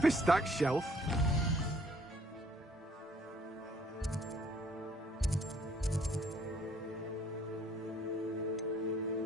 a stacked shelf.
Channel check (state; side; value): normal; both; correlation 0.61